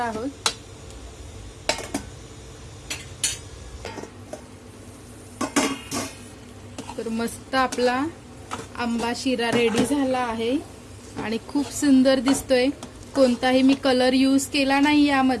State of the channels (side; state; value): both; identical; correlation 1.00